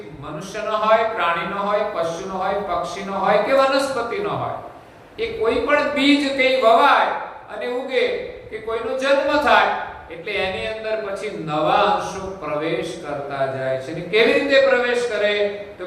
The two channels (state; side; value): identical; both; correlation 1.00